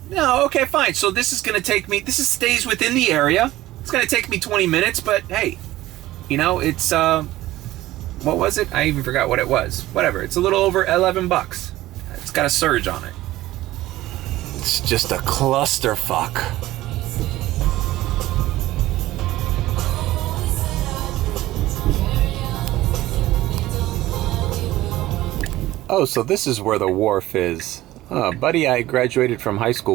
no, okay, fine. So this is gonna take me, stays within the area. It's gonna take me 20 minutes, but hey, you know, it's, what was it? I even forgot what it was. Whatever, it's a little over $11. It's got a surge on it. It's just a clusterfuck. Oh, so this is where the wharf is. Buddy I graduated from high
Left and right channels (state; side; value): quieter; left; 16.2 dB